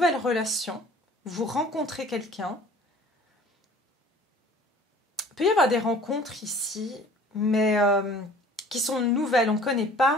relation. Vous rencontrez quelqu'un. Il peut y avoir des rencontres ici, mais... qui sont nouvelles, on ne connaît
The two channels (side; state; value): both; normal; correlation 0.48